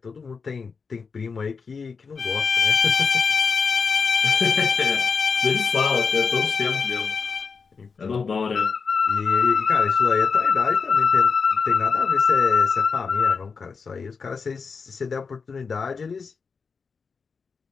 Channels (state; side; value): quieter; right; 5.2 dB